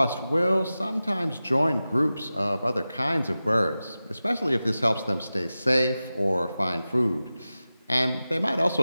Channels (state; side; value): inverted; both; correlation -0.95